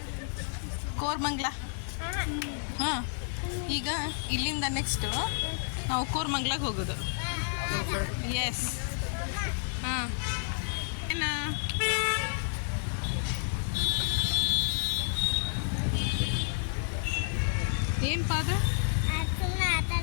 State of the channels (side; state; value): right; silent; 57 dB below the other